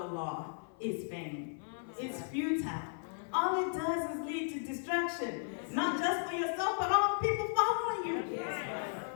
law is vain. It's futile. All it does is lead to destruction, not just for yourself, but all the people following you.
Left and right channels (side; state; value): right; silent; 54 dB below the other